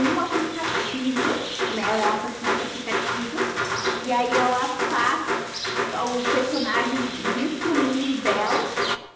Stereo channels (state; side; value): identical; both; correlation 1.00